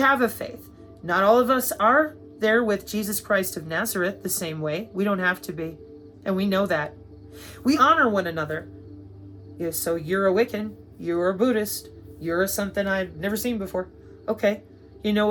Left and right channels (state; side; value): identical; both; correlation 1.00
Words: a faith. Not all of us are there with Jesus Christ of Nazareth the same way. We don't have to be. And we know that. We honor one another. Yeah, so you're a Wiccan, you're a Buddhist, you're something I've never seen before. Okay, you know